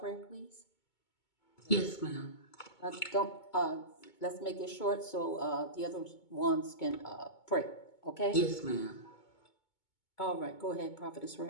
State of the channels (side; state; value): right; late; 2.2 ms